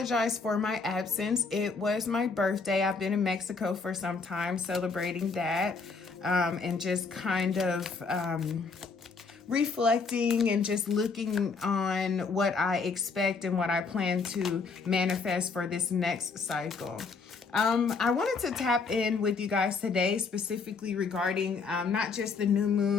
for my absence. It was my birthday. I've been in Mexico for some time celebrating that, and just kind of reflecting and just looking on what I expect and what I plan to manifest for this next cycle. I wanted to tap in with you guys today, specifically regarding not just the new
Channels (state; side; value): quieter; right; 4.7 dB